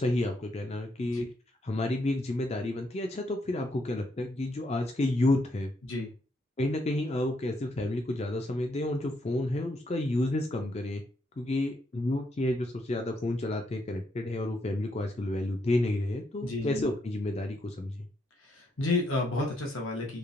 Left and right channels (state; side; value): normal; both; correlation 0.76